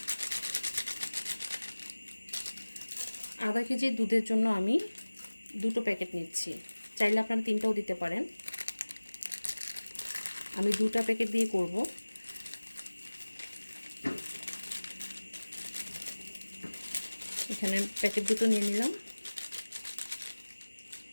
আধা কেজি দুধের জন্য আমি দুটো প্যাকেট নিচ্ছি। চাইলে আপনারা তিনটাও দিতে পারেন। আমি দুটো প্যাকেট দিয়ে করব। এখানে প্যাকেট দুটো নিয়ে নিলাম।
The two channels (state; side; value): inverted; both; correlation -1.00